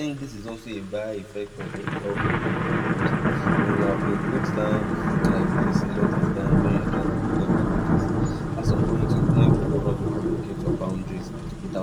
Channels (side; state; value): both; identical; correlation 1.00